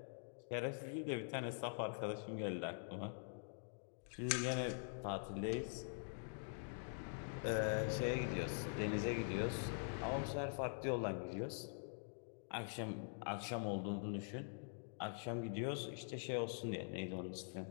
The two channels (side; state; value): right; silent; digital silence